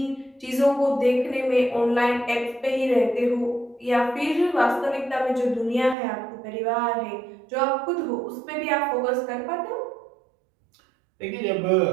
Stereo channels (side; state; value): left; drops out; at 6.0 s